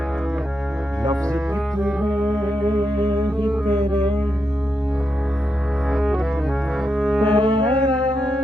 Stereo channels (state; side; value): normal; both; correlation 0.85